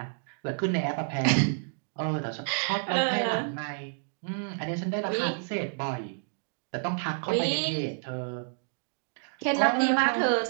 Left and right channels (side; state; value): left; silent; digital silence